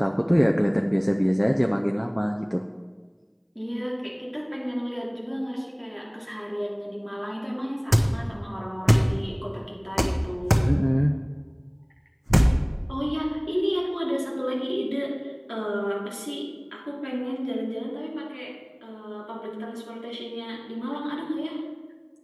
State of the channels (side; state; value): both; identical; correlation 1.00